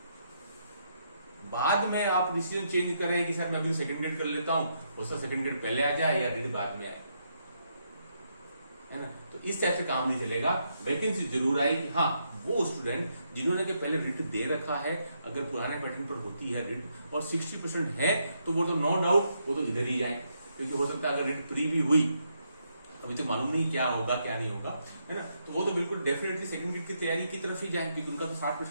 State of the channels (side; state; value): both; inverted; correlation -0.78